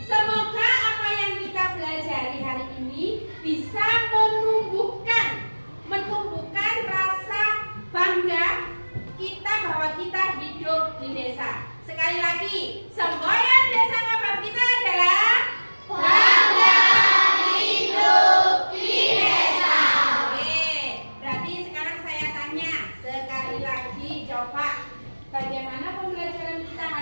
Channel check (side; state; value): both; inverted; correlation -1.00